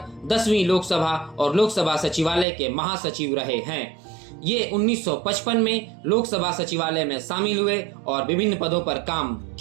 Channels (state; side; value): drops out; left; at 2.5 s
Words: 10वीं लोकसभा और लोकसभा सचिवालय के महासचिव रहे हैं। ये 1955 में लोकसभा सचिवालय में शामिल हुए और विभिन्न पदों पर काम